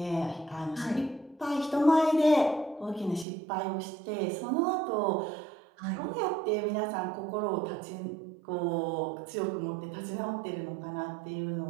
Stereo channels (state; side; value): drops out; left; at 3.2 s